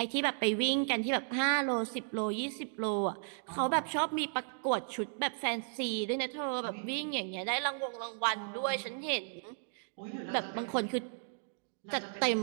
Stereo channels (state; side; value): silent; left; digital silence